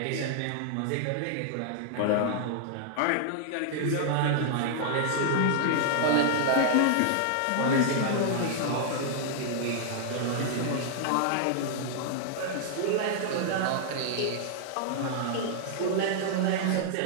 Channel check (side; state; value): both; different; correlation -0.01